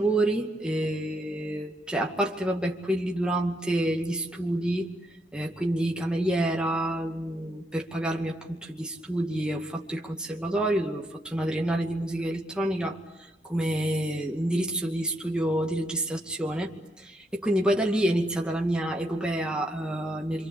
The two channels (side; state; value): both; normal; correlation 0.77